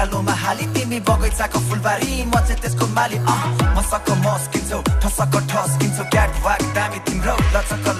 हाली तिमी बगैँचाको फुलबारी म चाहिँ त्यसको माली मसक मस्किन्छौ ठसक ठस्किन्छौ क्याट वाक दामी तिम्रो लचक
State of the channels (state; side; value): identical; both; correlation 1.00